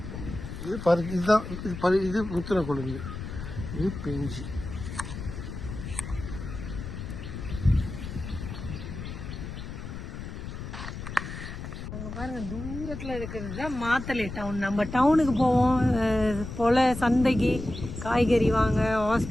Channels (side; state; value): left; noise; rumble, 8 dB below the sound